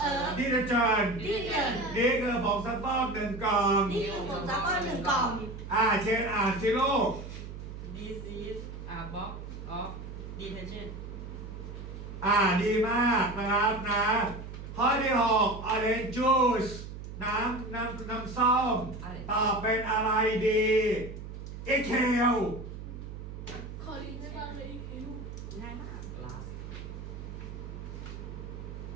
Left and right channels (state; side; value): noise; right; hum, 10 dB below the sound